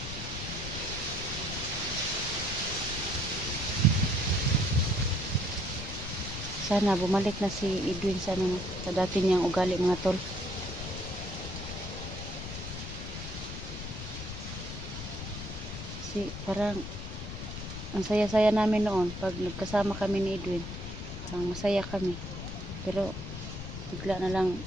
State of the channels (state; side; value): noise; left; rumble, 8 dB below the sound